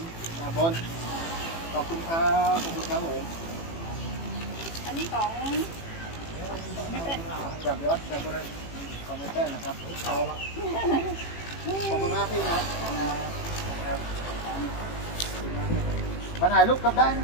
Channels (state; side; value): late; right; 18 ms